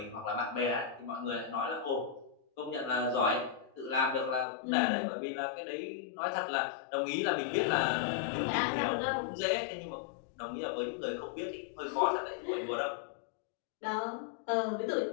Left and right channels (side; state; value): right; drops out; at 4.5 s